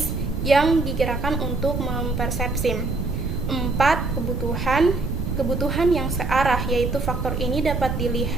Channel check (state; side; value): noise; right; rumble, 3 dB below the sound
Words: yang digerakkan untuk mempersepsi. 4. Kebutuhan yang searah, yaitu faktor ini dapat